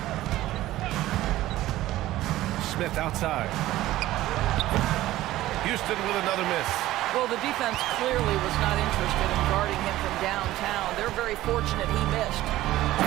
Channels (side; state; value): left; quieter; 15.6 dB